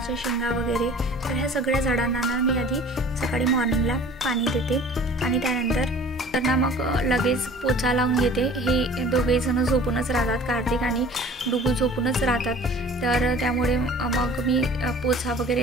शेंगा वगैरे. तर ह्या सगळ्या झाडांना ना मी आधी सकाळी मॉर्निंगला पाणी देते आणि त्यानंतर ना मग लगेच पोचा लावून घेते. हे दोघेजणं झोपूनच राहतात, कार्तिक आणि डुगू झोपूनच राहतात, तर त्यामुळे मग मी पोचा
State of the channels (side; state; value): both; normal; correlation 0.46